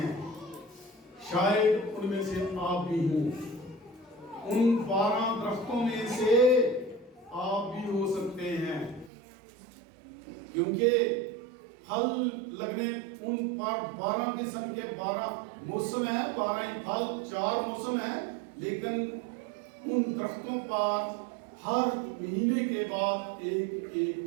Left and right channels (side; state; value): left; drops out; at 9.1 s